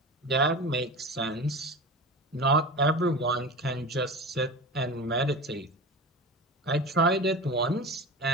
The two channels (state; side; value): normal; both; correlation 0.30